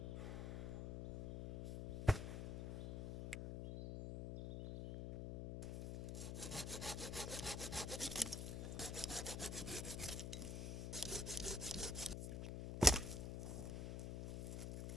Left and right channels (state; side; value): noise; left; hum, 3 dB below the sound